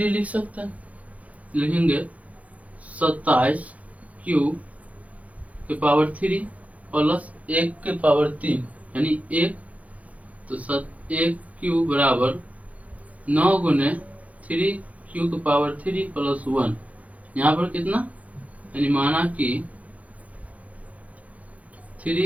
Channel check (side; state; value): left; late; 0.068 ms